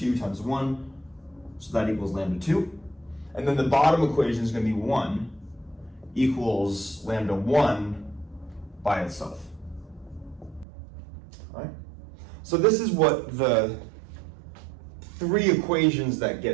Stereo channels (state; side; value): drops out; left; at 10.7 s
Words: times 1, so that equals lambda 2. And then the bottom equation is going to be 1 equals lambda 1 by itself. All right? So this is what the 3 equations that